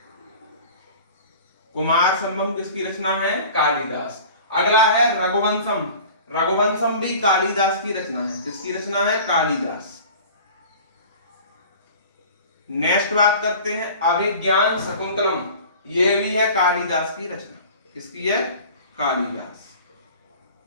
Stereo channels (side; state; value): both; inverted; correlation -0.42